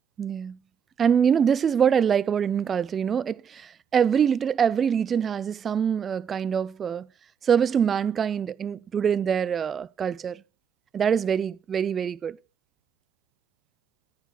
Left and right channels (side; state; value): left; quieter; 7.5 dB